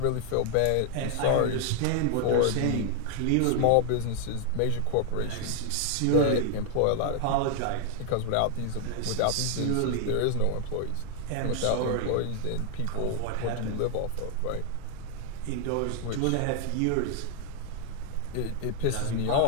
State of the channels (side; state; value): both; different; correlation 0.00